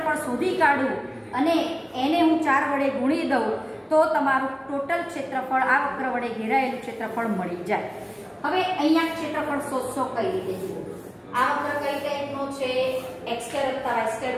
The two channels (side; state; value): both; identical; correlation 1.00